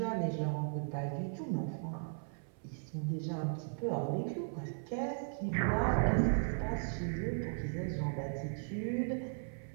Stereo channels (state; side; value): silent; left; 53 dB below the other